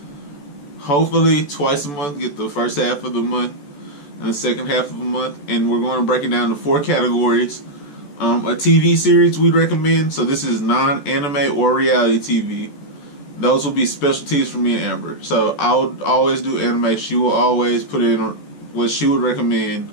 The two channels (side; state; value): right; late; 14 ms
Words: hopefully twice a month. Get the first half of the month and the second half of the month, and we're going to break it down to 4 categories. A TV series we'd recommend. So this is non-anime or reality TV. Those will be specialties for me and Amber. So I would always do anime. She will always put in what she would recommend